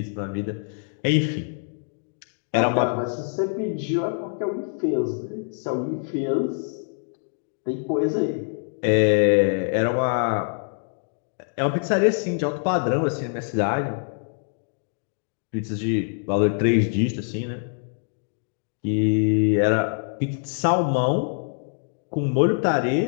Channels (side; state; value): right; silent; digital silence